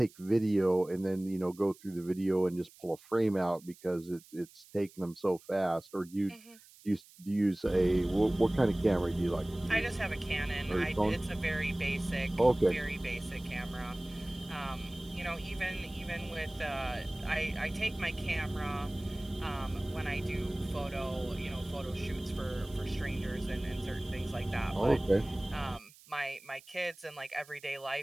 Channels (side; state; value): right; noise; hiss, 23 dB below the sound